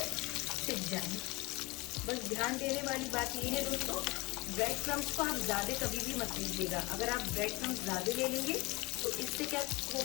सिक जाए। बस ध्यान देने वाली बात ये है दोस्तों, ब्रेड क्रम्स को आप ज्यादा कभी भी मत लीजिएगा। अगर आप ब्रेड क्रम्स ज्यादा ले लेंगे तो इससे क्या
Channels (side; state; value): right; quieter; 23.9 dB